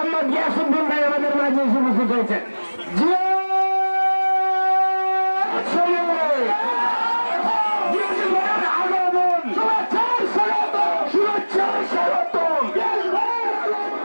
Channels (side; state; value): both; inverted; correlation -1.00